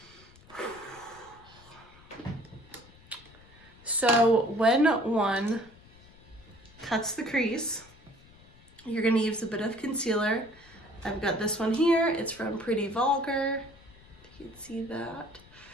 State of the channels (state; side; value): noise; left; rumble, 24 dB below the sound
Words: So when one cuts the crease, you're going to use a bit of concealer. I've got this one here. It's from Pretty Vulgar. You can see that.